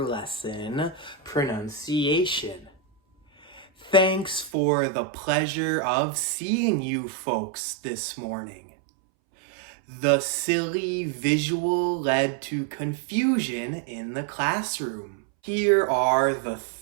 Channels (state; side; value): drops out; left; at 4.5 s